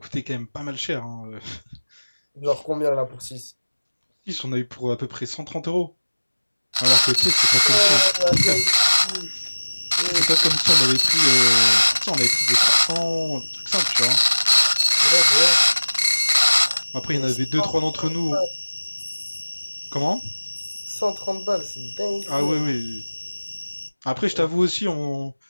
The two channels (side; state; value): both; inverted; correlation -1.00